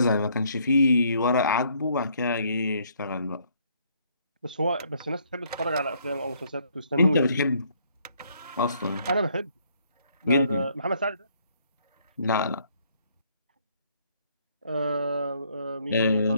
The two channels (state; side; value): inverted; both; correlation -0.67